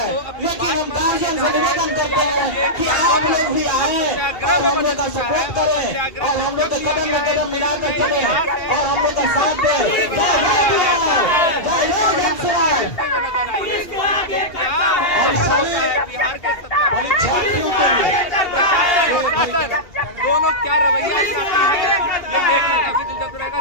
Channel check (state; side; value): late; right; 2.8 ms